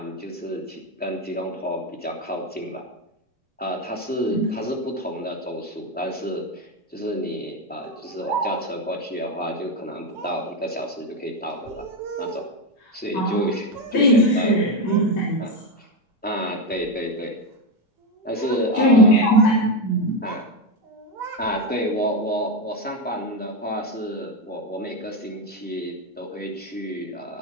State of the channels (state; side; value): normal; both; correlation 0.11